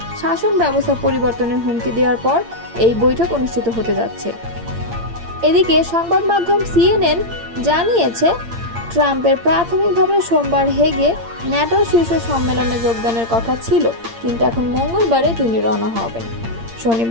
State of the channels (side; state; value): left; late; 8.7 ms